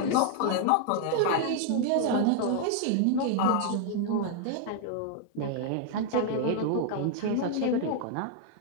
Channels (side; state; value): both; different; correlation 0.00